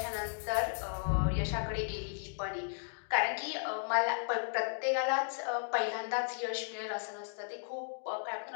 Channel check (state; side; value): silent; right; digital silence